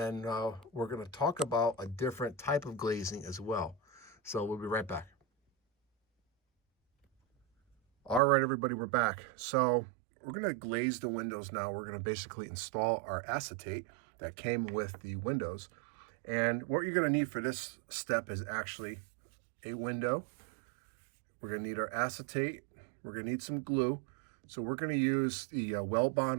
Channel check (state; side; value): drops out; left; at 8.2 s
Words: we're going to talk about a different type of glazing as well. So we'll be right back. All right, everybody, we're back. So we're going to glaze the windows now. We're going to basically install our acetate that came with the windows. And what you're going to need for this step is actually a window. We're going to need our acetate. We're going to need some glue. So we're going to use the Well